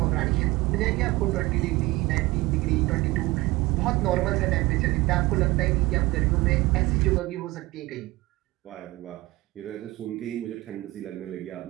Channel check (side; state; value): left; quieter; 20.4 dB